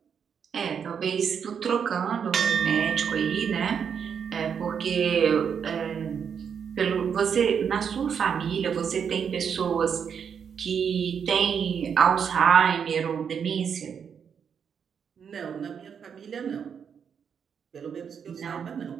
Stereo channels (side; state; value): left; quieter; 7.2 dB